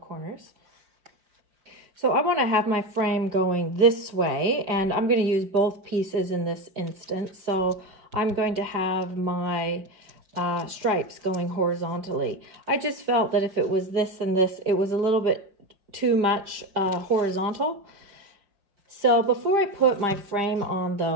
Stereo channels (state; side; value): late; left; 5.0 ms